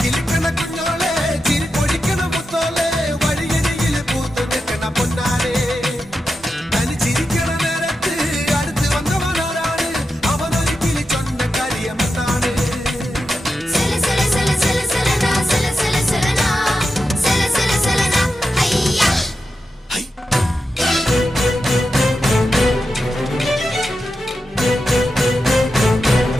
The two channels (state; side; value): normal; both; correlation 0.89